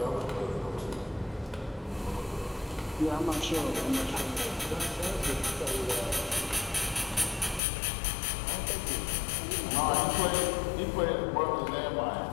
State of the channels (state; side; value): drops out; right; at 7.6 s